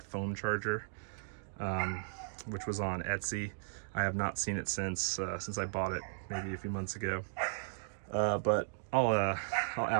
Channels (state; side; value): silent; left; digital silence